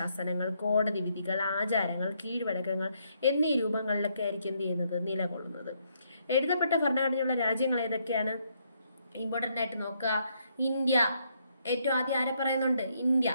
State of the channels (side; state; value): both; inverted; correlation -0.74